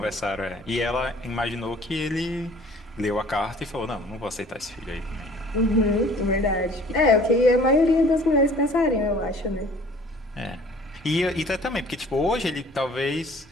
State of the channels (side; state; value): both; normal; correlation 0.51